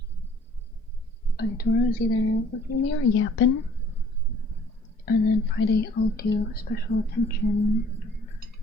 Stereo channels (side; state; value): both; normal; correlation 0.55